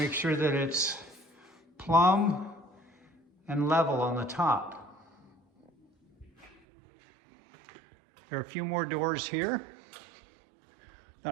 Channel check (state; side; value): drops out; left; at 6.6 s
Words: sure that it's plumb and level on the top. There are a few more doors here.